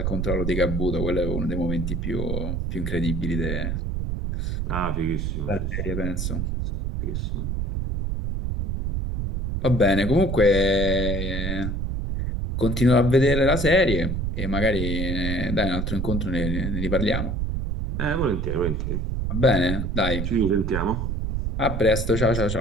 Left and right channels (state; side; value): noise; right; rumble, 1 dB below the sound